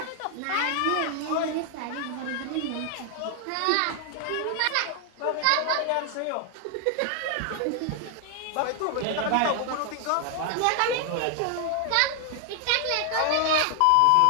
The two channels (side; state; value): both; different; correlation 0.00